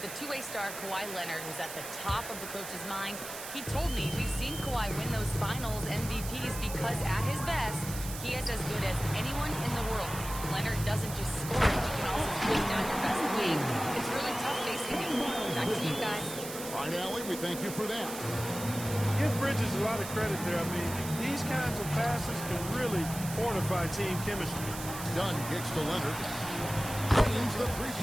The two-way star Kawhi Leonard was at the top of the coach's mind. He told me we've seen Kawhi win those finals MVPs because at his best, he is as good as anyone in the world. Leonard doesn't just score, he can also bring down your best wing. It's really tough facing him. Back to you guys. All right, Allie, we thank you for that. Give Bridges a lot of credit there. I mean, these kinds of passes can really fortify team chemistry. Dunn kicks to Leonard. Drains the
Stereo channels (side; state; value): right; noise; hiss, 9 dB below the sound